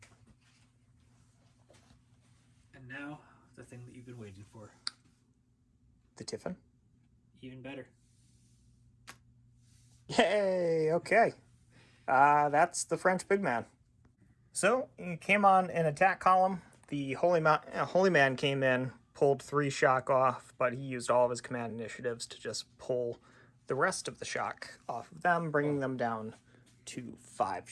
And now, the thing that you've been waiting for. The Tiffin. Even better. Yay! Okay. That's the French big man. So, he came on an attack column. The Holy Man came in, pulled 3 shock off, but he used all of his command initiatives to just pull the rest of the shock off of them, bringing them down to 5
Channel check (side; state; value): both; identical; correlation 1.00